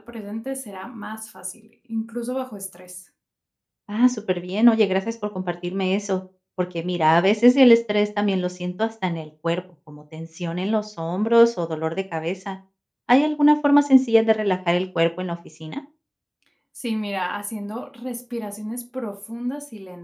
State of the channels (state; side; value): identical; both; correlation 1.00